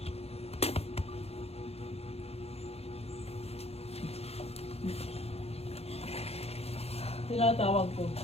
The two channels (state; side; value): late; right; 0.29 ms